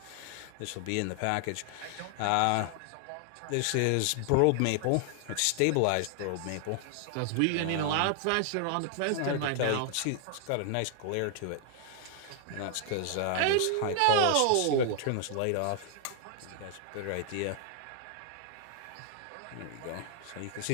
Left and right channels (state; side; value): different; both; correlation 0.00